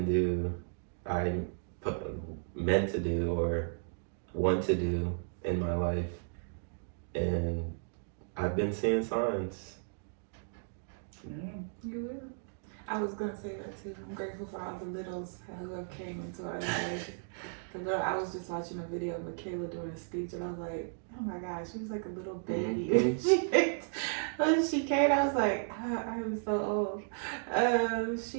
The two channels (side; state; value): left; silent; digital silence